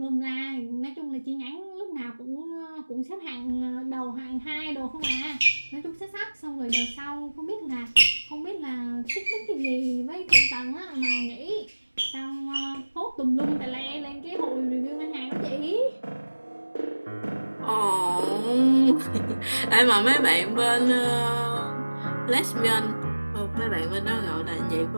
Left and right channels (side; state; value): both; inverted; correlation -1.00